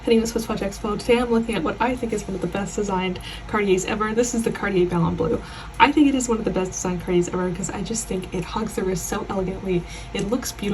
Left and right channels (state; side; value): identical; both; correlation 1.00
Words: name is SwissWatchExpo. Today I'm looking at what I think is one of the best designed Cartiers ever. This is the Cartier Ballon Bleu. I think it is one of the best designed Cartiers ever because I just think it hugs the wrist so elegantly, it looks